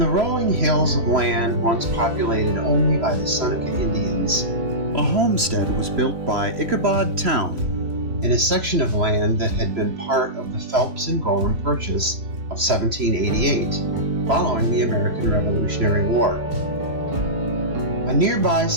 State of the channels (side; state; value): left; late; 3.0 ms